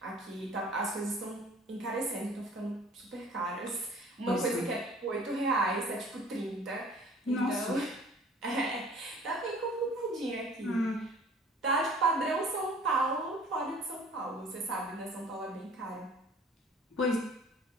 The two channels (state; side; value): normal; both; correlation 0.50